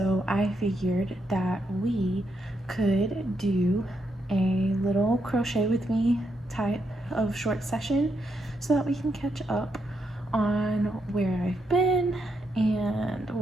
I figured that we could do a little crochet with me type of short session so that we can catch up on where I've been and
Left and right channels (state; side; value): normal; both; correlation 0.80